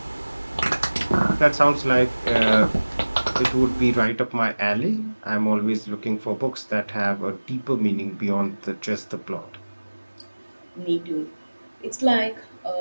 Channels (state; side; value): inverted; both; correlation -1.00